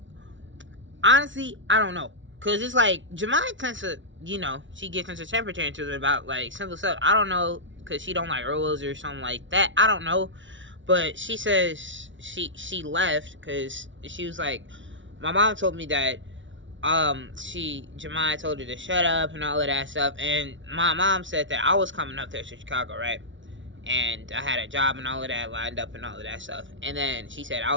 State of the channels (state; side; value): late; left; 0.55 ms